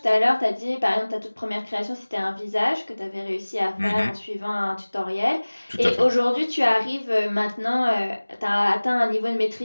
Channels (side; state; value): both; inverted; correlation -1.00